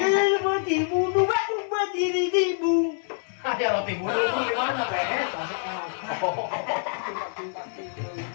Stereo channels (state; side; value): silent; right; 61 dB below the other